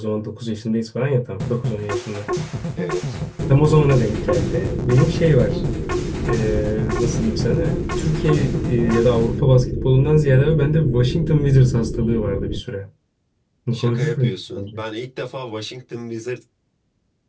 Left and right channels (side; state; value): both; identical; correlation 1.00